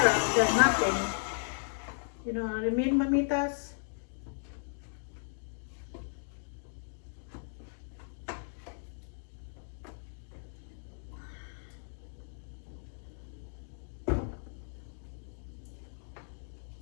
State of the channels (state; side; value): silent; right; digital silence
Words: than nothing. You know what I mean, mamitas?